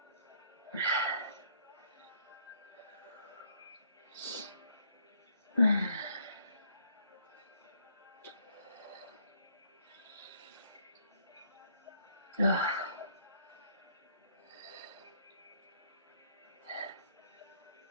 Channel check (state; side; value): inverted; both; correlation -0.66